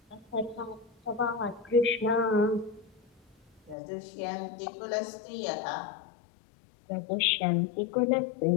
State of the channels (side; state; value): right; drops out; at 3.8 s